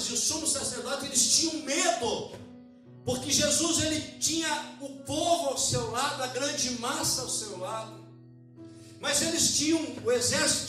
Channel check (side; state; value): both; identical; correlation 1.00